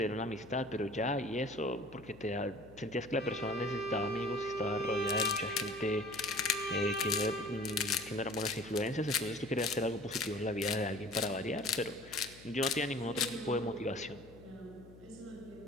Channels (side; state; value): left; noise; hum, 20 dB below the sound